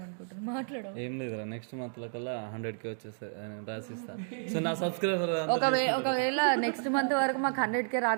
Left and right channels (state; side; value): silent; left; digital silence